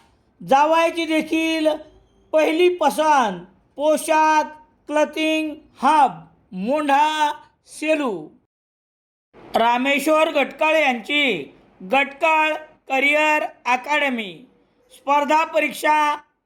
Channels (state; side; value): identical; both; correlation 1.00